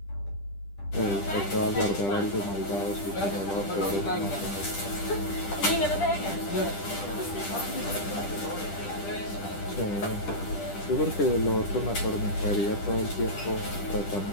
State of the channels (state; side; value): late; right; 10 ms